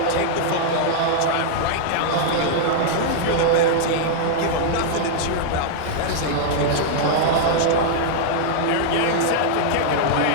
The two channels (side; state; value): both; different; correlation -0.01